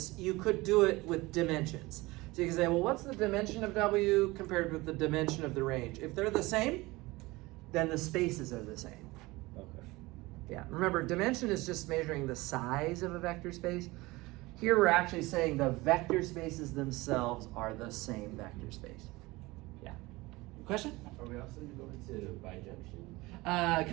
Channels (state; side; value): quieter; left; 21.4 dB